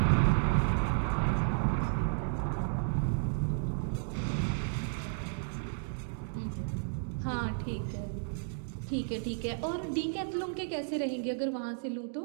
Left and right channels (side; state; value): left; silent; digital silence